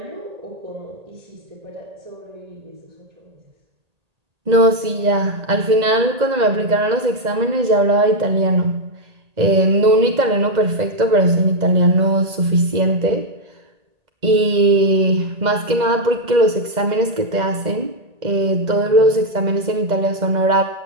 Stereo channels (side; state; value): left; late; 1.8 ms